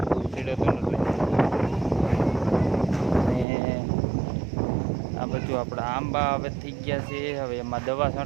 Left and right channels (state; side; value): drops out; left; at 3.5 s